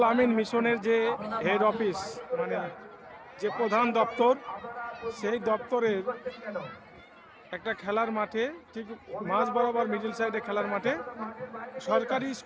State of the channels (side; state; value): both; identical; correlation 1.00